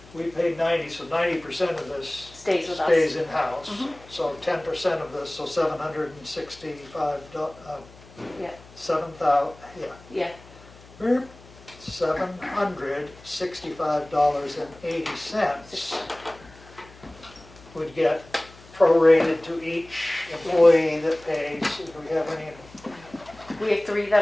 We paid 90, so 90% of this Stays with us. stays in-house. So 10% of this, so $765, Yeah. 7,000, Yeah. $765.80 would get prorated to each employee that pays. Do we have any? We have 3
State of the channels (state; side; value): noise; left; hum, 22 dB below the sound